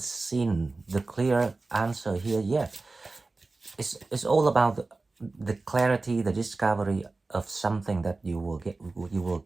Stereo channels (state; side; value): quieter; left; 3.5 dB